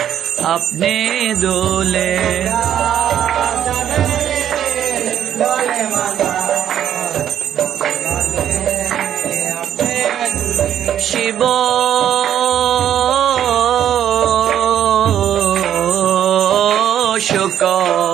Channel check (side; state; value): left; quieter; 10.3 dB